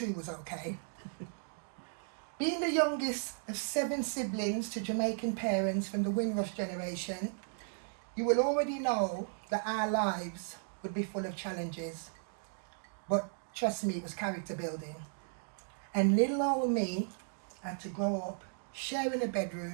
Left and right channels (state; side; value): silent; left; digital silence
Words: was okay. Being the youngest of 7 siblings to Jamaican parents from the Windrush generation, you will already know that our lives would be full of challenges. But trust me, it was character building. And little old me had to grow up sharing a